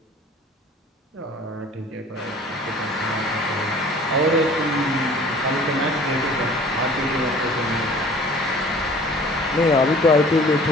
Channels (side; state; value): both; normal; correlation 0.48